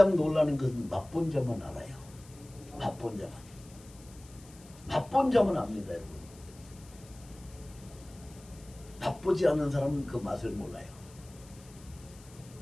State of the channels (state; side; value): noise; left; hiss, 23 dB below the sound